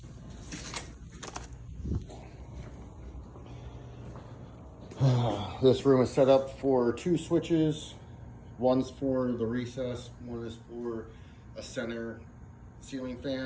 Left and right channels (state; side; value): identical; both; correlation 1.00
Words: This room is set up for 2 switches. One's for the recess, one is for a center ceiling